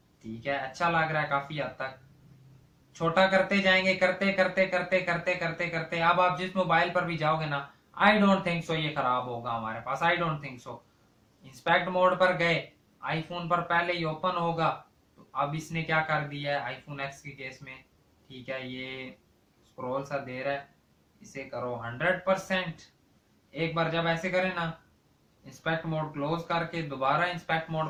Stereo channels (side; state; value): both; identical; correlation 1.00